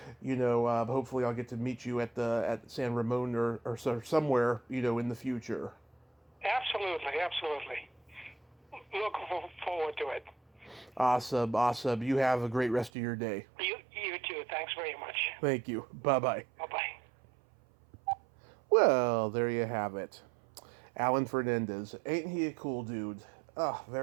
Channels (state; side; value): drops out; left; at 12.9 s